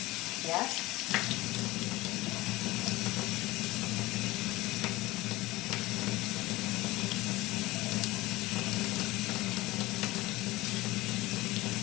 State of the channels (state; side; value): quieter; right; 19.6 dB